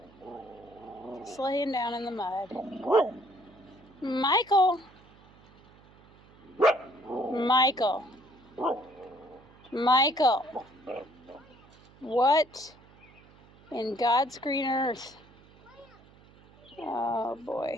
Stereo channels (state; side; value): noise; right; hum, 26 dB below the sound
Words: Just laying down in the mud. Michael. Michael. Michael. What in God's green earth? Oh boy.